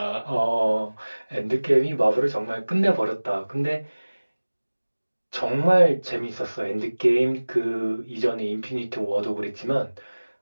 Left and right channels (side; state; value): both; inverted; correlation -1.00